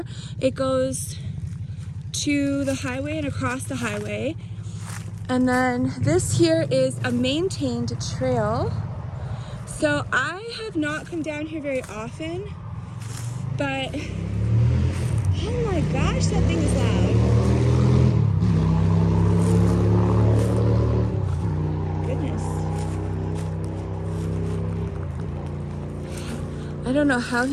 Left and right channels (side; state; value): both; identical; correlation 1.00